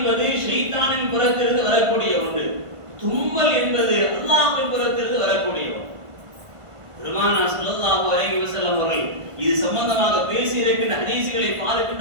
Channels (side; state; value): left; late; 1.5 ms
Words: ஷைத்தானின் புறத்திலிருந்து வரக்கூடிய ஒன்று. தும்மல் என்பது அல்லாஹ்வின் புறத்திலிருந்து வரக்கூடிய ஒன்று. பெருமானார் ஸல்லல்லாஹு அலைஹி வஸல்லம் அவர்கள் இது சம்பந்தமாக பேசி இருக்கின்ற ஹதீஸ்களை